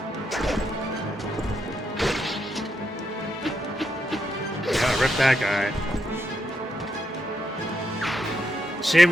Yeah, rip that guy. Shame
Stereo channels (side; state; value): both; normal; correlation 0.81